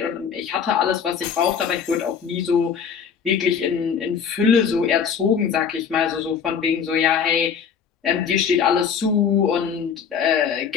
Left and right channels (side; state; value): right; quieter; 7.0 dB